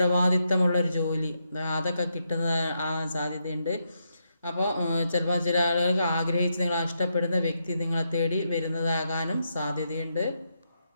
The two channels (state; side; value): inverted; both; correlation -0.82